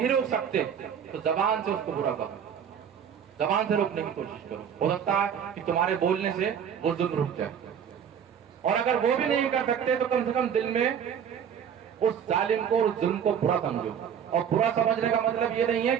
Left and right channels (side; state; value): left; quieter; 8.2 dB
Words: रोक सकते, तो जबान से उसको बुरा करो, जबान से रोकने की कोशिश करो। हो सकता है कि तुम्हारे बोलने से वो जुल्म रुक जाए। और अगर वो भी नहीं कर सकते तो कम से कम दिल में उस जालिम को, उस जुल्म को बुरा समझो। और बुरा समझने का मतलब ये नहीं है